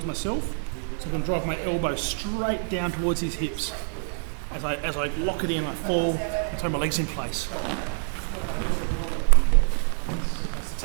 myself, so I can drive my elbow straight down towards his hips. As I lock it in, I fall and throw my legs in place. That's the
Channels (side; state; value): left; silent; 60 dB below the other